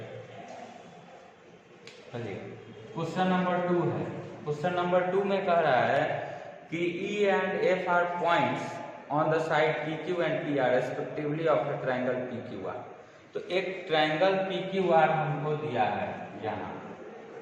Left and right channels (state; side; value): identical; both; correlation 1.00